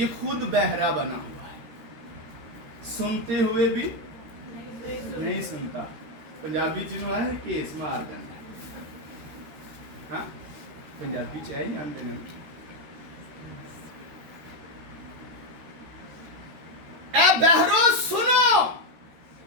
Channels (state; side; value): late; left; 13 ms